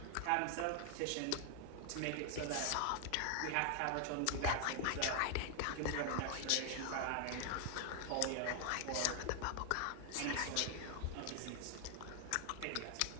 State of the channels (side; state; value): both; different; correlation 0.00